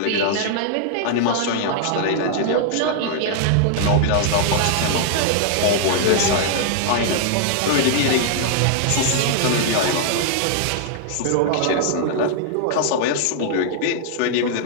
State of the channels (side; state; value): both; different; correlation -0.01